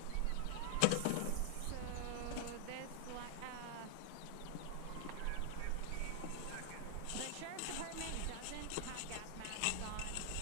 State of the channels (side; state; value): both; different; correlation 0.00